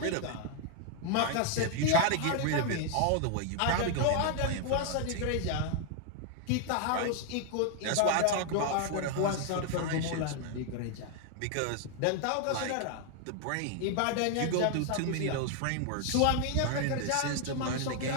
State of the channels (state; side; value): different; both; correlation 0.00